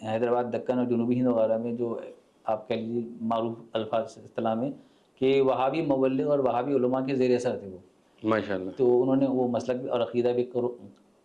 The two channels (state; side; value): identical; both; correlation 1.00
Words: حیدرآباد دکن اور جنوبی ہند وغیرہ میں جو آپ کہہ لیجیے معروف الفاظ اصطلاح میں کہ وہابی مبلغ اور وہابی علماء کے زیر اثر تھے وہ. ماشاء اللہ. تو انہوں نے وہ مسلک اور عقیدہ بھی